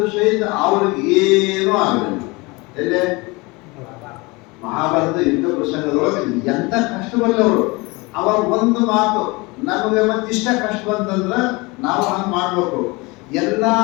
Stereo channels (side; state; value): right; quieter; 25.2 dB